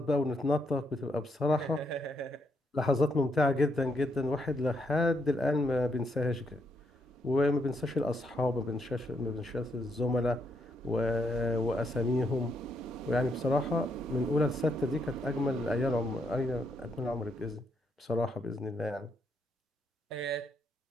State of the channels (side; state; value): both; normal; correlation 0.76